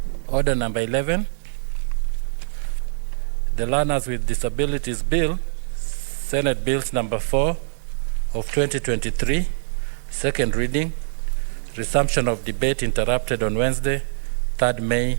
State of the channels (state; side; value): silent; left; digital silence